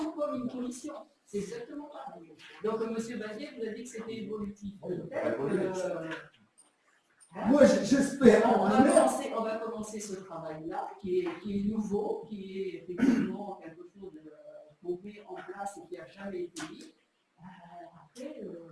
comme une commission. C'est exactement pareil. Donc, monsieur Bazier vous a dit que c'était évolutif. Peut-être que, Moi, j'espère. on va commencer ce travail-là, qui est nouveau, qui est effectivement quelque chose qu'on met en place et qui n'a jamais été mis. Après,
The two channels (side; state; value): both; identical; correlation 1.00